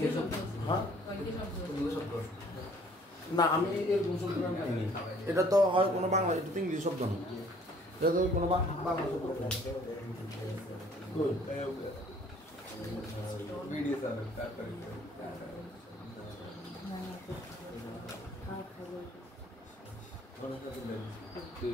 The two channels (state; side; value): normal; both; correlation 0.58